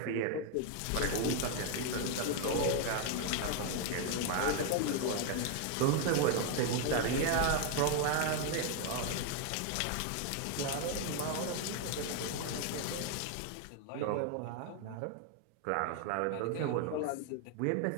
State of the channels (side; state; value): both; different; correlation 0.01